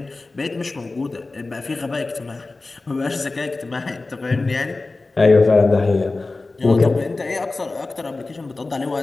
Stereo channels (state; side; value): quieter; right; 3.4 dB